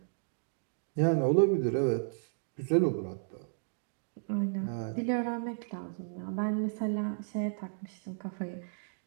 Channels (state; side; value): silent; left; digital silence